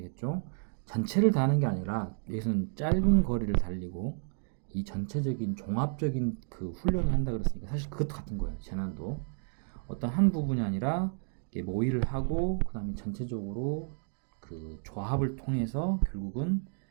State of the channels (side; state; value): left; silent; 57 dB below the other